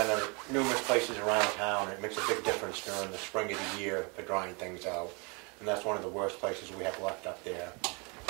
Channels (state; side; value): quieter; left; 31.6 dB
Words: it numerous places around town. It makes a big difference during the spring of the year for drying things out, and that's one of the worst places we have left up there.